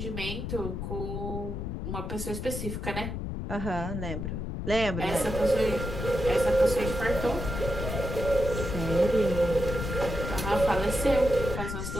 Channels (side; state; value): left; noise; rumble, 4 dB below the sound